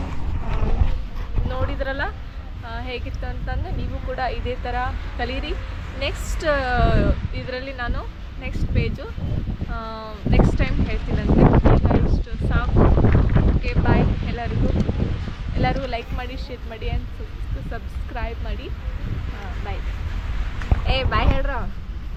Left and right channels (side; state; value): both; identical; correlation 1.00